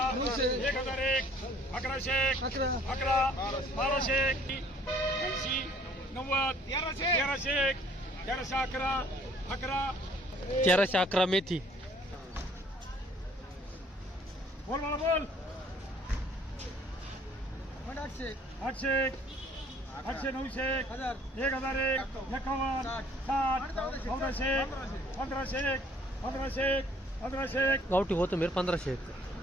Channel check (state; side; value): normal; both; correlation 0.58